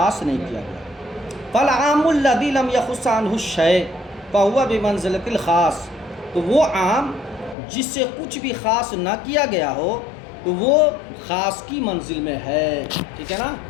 نہیں کیا گیا. فالعام الذی لم یخص عنہ الشیء فہو بمنزلۃ الخاص، تو وہ عام جس سے کچھ بھی خاص نہ کیا گیا ہو تو وہ خاص کی منزل میں ہے. ٹھیک ہے نا،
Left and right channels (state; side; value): drops out; right; at 7.6 s